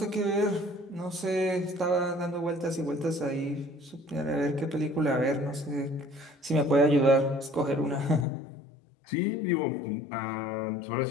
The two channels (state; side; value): drops out; right; at 8.2 s